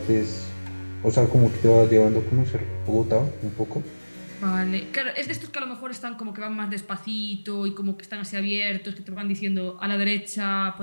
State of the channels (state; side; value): inverted; both; correlation -1.00